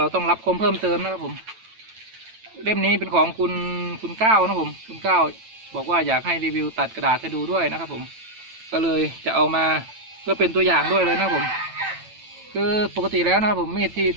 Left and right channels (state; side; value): late; left; 9.0 ms